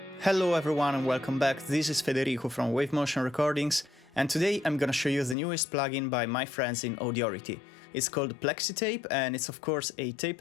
Hello everyone and welcome back, this is Federico from Wave Motion Recordings, and today I'm gonna show you the newest plugin by my friends in Audiority. It's called PlexiTape and it's of course a tape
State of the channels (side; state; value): right; drops out; at 5.4 s